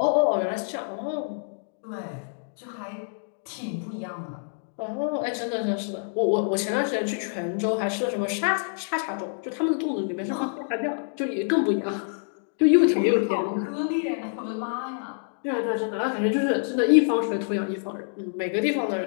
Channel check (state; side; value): silent; right; digital silence